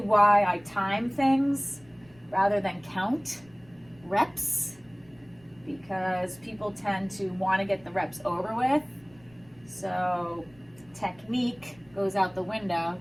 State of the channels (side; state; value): right; noise; rumble, 28 dB below the sound